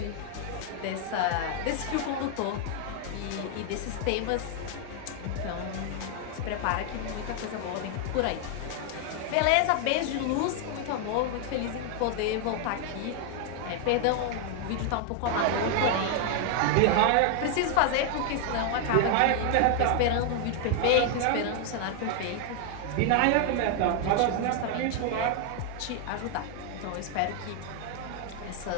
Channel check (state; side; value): different; both; correlation 0.00